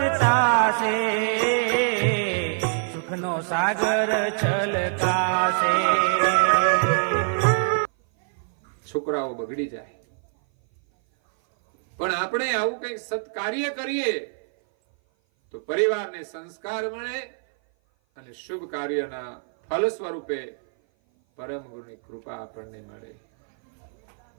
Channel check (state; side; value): silent; left; 57 dB below the other